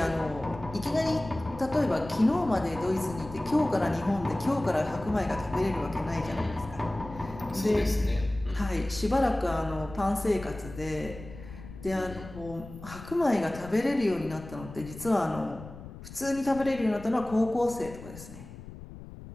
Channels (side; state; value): left; noise; rumble, 14 dB below the sound